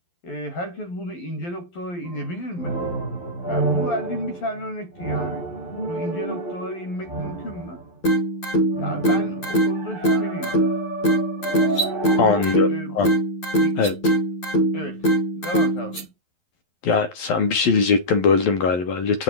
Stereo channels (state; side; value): late; right; 11 ms